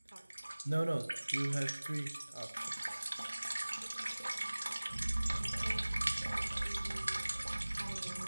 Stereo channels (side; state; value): both; inverted; correlation -1.00